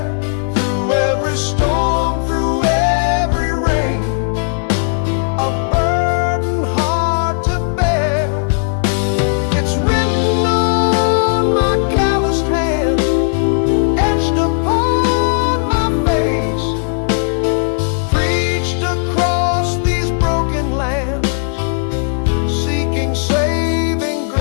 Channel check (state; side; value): silent; right; 69 dB below the other